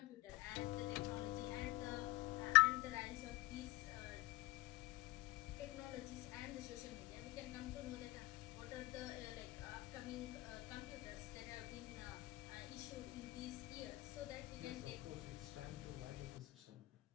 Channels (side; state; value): right; quieter; 19.7 dB